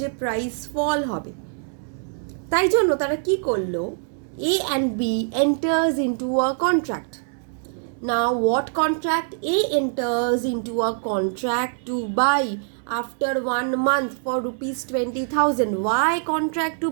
price ফল হবে। তাই জন্য তারা কি করলো, A and B enters into a contract. Now what contract? A enters into a contract to buy after 1 month for rupees 20,000. Why contract to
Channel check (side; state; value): left; silent; 63 dB below the other